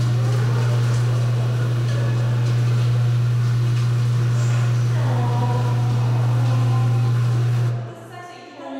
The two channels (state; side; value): identical; both; correlation 1.00